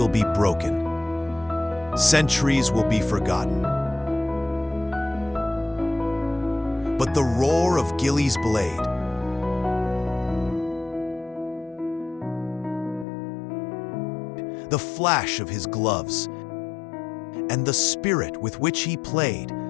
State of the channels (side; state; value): right; drops out; at 13.1 s